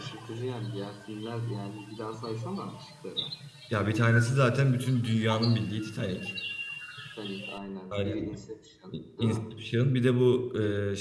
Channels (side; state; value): both; identical; correlation 1.00